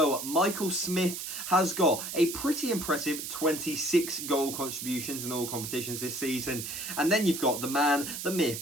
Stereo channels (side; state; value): right; noise; hiss, 6 dB below the sound